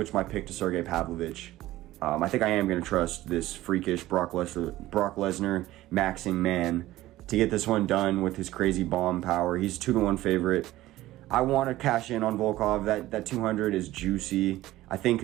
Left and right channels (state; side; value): quieter; left; 16.1 dB